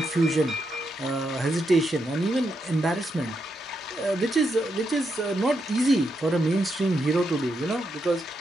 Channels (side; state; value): both; normal; correlation 0.82